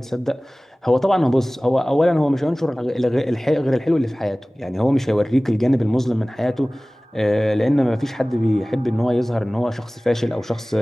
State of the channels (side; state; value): both; normal; correlation 0.98